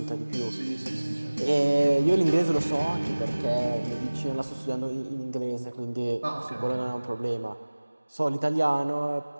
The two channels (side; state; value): both; inverted; correlation -1.00